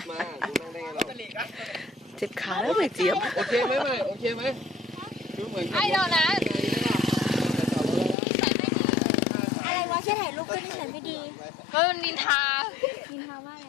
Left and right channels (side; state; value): right; drops out; at 8.2 s